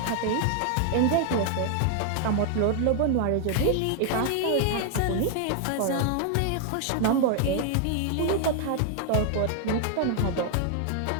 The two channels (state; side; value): different; both; correlation 0.00